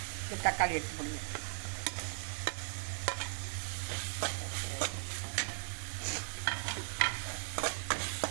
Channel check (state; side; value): silent; left; digital silence